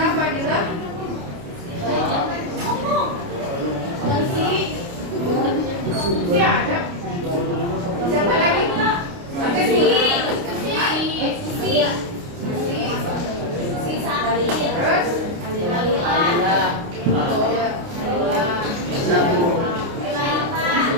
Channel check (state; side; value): late; left; 29 ms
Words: Fadila? Si ada? Siapa lagi? Ada si Sari. Terus?